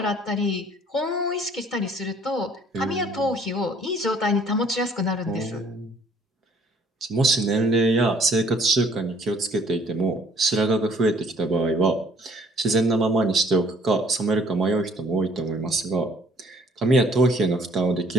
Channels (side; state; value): both; normal; correlation 0.58